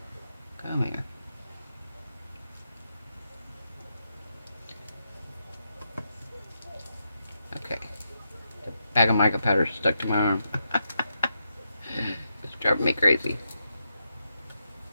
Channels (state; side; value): inverted; both; correlation -0.84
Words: Come here. Okay. The bag of mica powder stuck to my arm. It's driving me crazy.